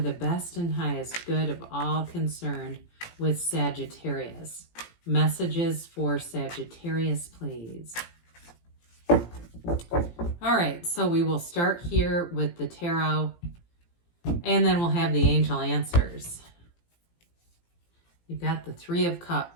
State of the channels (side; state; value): right; late; 17 ms